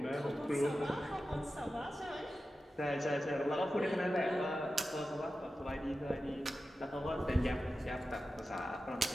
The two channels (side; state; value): both; normal; correlation 0.93